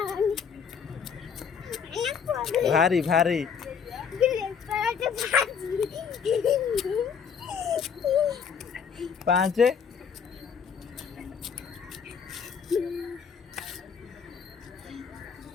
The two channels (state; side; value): quieter; right; 6.7 dB